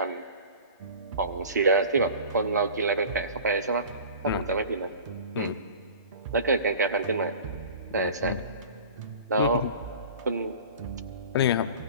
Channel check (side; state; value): both; inverted; correlation -0.40